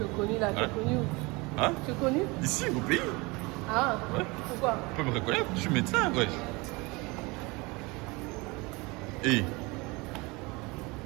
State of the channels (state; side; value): quieter; left; 25.3 dB